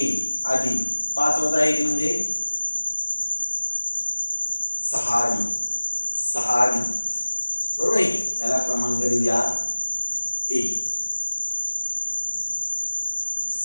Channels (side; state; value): both; inverted; correlation -1.00